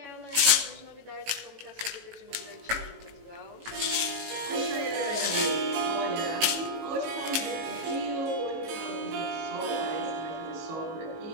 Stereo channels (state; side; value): late; left; 18 ms